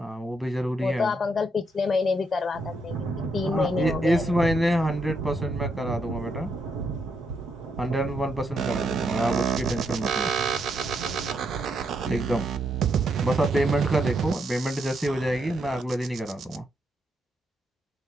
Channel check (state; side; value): normal; both; correlation 0.78